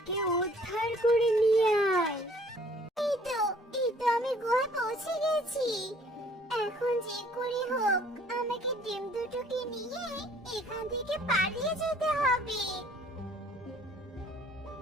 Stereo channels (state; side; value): normal; both; correlation 0.57